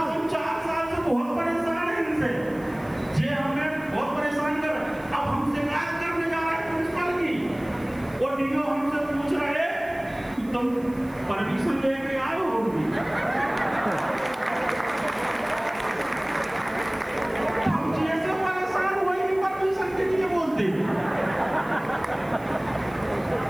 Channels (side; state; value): right; noise; hiss, 26 dB below the sound